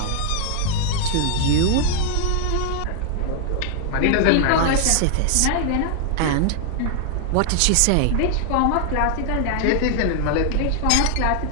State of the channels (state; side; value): different; both; correlation 0.00